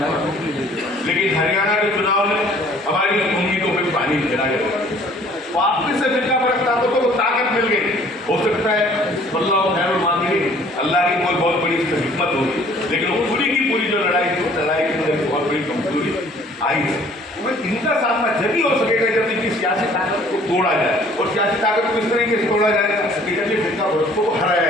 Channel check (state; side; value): normal; both; correlation 0.55